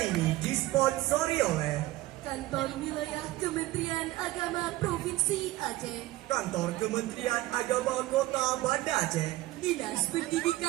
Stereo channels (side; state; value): left; quieter; 17.4 dB